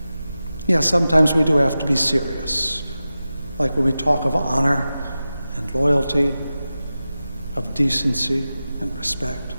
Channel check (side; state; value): both; inverted; correlation -0.94